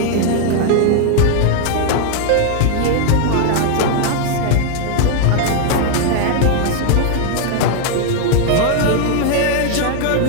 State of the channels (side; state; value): both; different; correlation 0.00